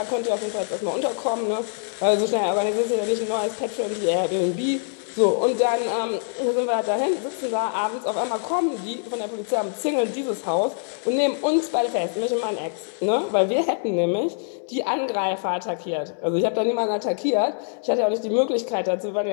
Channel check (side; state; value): right; silent; 62 dB below the other